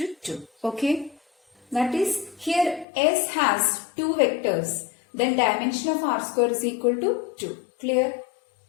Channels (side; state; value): right; drops out; at 2.9 s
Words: Okay. That is, here S has 2 vectors. Then dimension of R square is equal to 2. Clear?